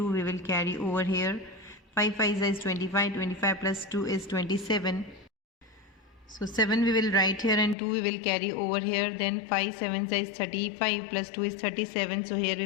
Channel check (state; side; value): drops out; right; at 7.8 s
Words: we will carry over here. 5 5 is 25, 25 plus 2 is 27. So 7 we will write here and 2 we will carry over here. Then 5 7 is 35 plus 2 is 37. So here